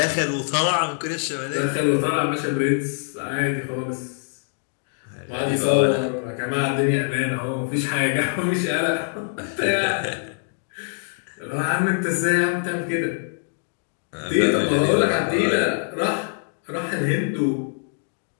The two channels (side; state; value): right; silent; digital silence